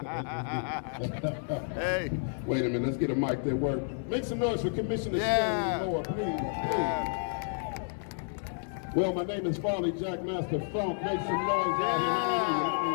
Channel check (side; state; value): right; silent; 57 dB below the other